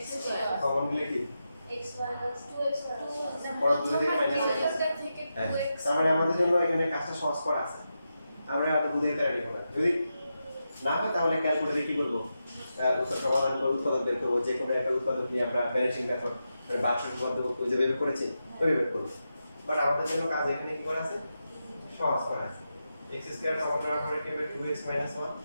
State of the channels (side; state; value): both; inverted; correlation -0.88